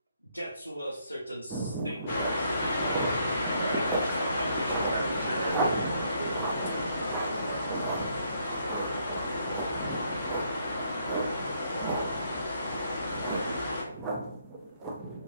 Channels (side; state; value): both; inverted; correlation -0.70